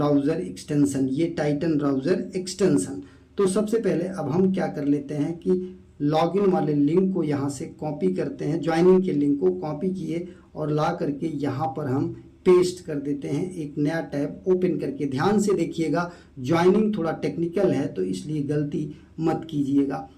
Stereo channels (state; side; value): identical; both; correlation 1.00